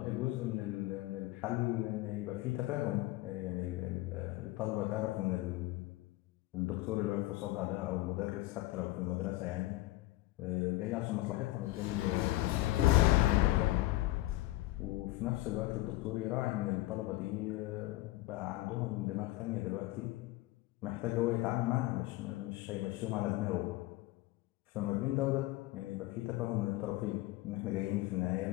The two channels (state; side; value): quieter; right; 17.8 dB